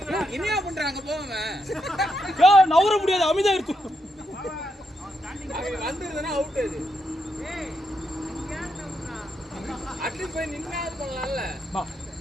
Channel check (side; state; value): both; normal; correlation 0.81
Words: என்னையா பண்றாங்க போவாங்க. யோ நவர முடியாது. அமிதா இருக்கு. வந்துருதுனா அவுட் அது. ஏய் இங்க ஏன்டா அட்லீஸ்ட் போய் நின்னாது பண்ணலாம்ல.